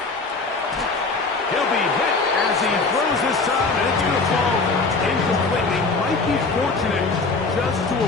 He'll be hit as he throws this time, and it's going to fall incompletely. Might be fortunate just to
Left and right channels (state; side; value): quieter; right; 3.9 dB